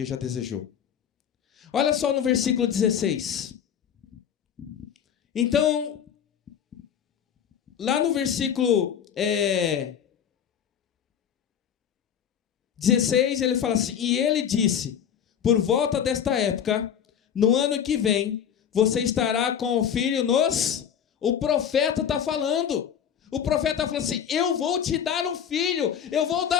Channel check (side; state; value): right; quieter; 8.5 dB